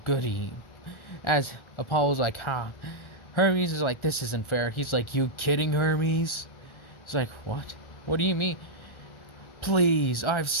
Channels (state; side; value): late; right; 1.4 ms